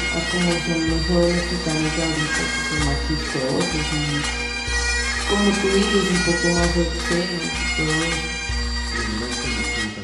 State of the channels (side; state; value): both; identical; correlation 1.00